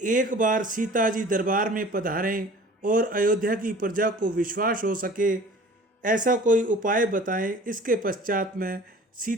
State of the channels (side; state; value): both; normal; correlation 0.46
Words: एक बार सीता जी दरबार में पधारें और अयोध्या की प्रजा को विश्वास हो सके ऐसा कोई उपाय बताएं, इसके पश्चात मैं